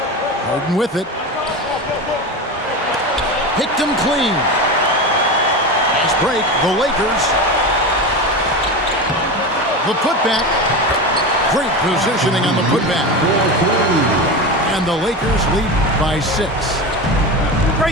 Harden with it. Picked him clean. Fast break, the Lakers. The putback. Great positioning on the putback. And the Lakers lead by 6.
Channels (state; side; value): normal; both; correlation 0.23